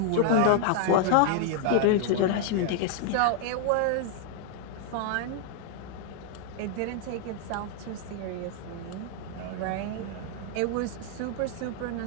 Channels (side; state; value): both; different; correlation 0.00